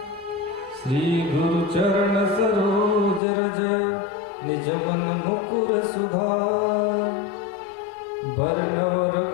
श्री गुरु चरण सरोज रज निज मन मुकुर सुधार। वर्णव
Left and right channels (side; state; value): right; drops out; at 3.2 s